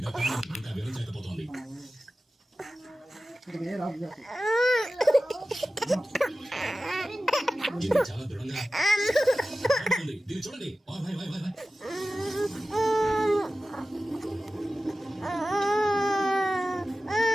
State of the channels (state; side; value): normal; both; correlation 0.95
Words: అత్యంత వివరించలేకపోతోంది. చాలా దృఢంగా దీన్ని చూడండి.